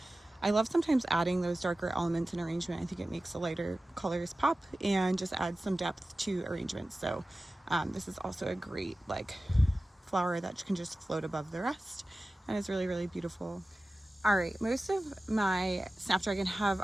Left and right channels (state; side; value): normal; both; correlation 0.96